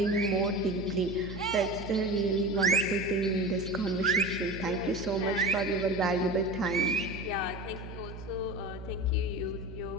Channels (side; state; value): right; noise; hum, 11 dB below the sound